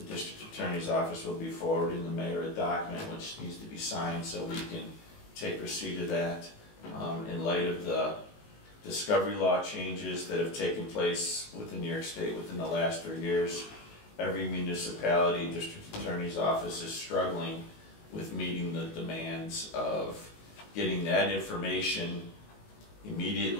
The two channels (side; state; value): right; late; 19 ms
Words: district attorney's office will be forwarding the mayor a document which needs to be signed so we can take receipt of that. In light of the discovery law changes that have taken place within New York State within the last 3 years, every municipality, district attorney's office is struggling with meeting the demands of getting that information